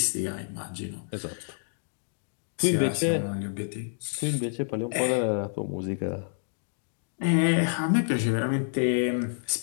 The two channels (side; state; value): right; silent; digital silence